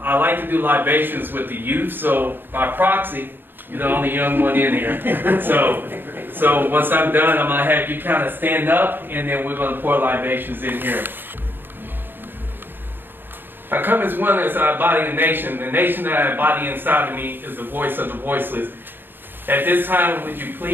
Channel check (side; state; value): left; late; 0.098 ms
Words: like to do libations with the youth, so by proxy, you're the only young one in here. So once I'm done, I'm going to have you kind of stand up, and then we're going to pour libations in here. I come as one as I embody a nation. The nation that I embody inside of me is the voice of the voiceless. At this time, would you